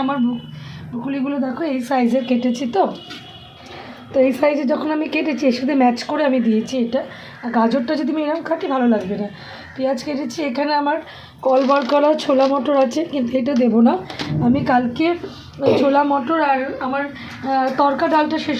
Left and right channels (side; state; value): both; identical; correlation 1.00